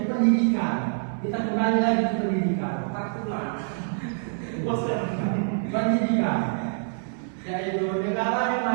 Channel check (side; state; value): left; silent; 61 dB below the other